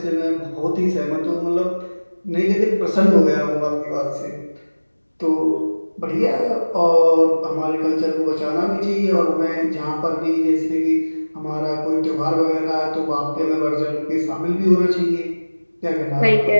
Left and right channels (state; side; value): inverted; both; correlation -1.00